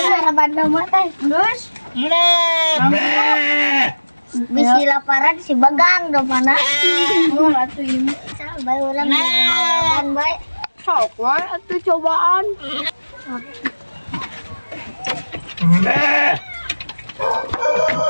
Maraban doma teh. Terus? Bisi laparan si Bagang domana. Mau atuh ieu. Bae urang maraban bae. Sok wae atuh cobaan.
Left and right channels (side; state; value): both; inverted; correlation -1.00